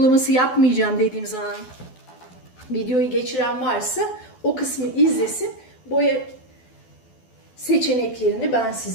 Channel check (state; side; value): late; right; 12 ms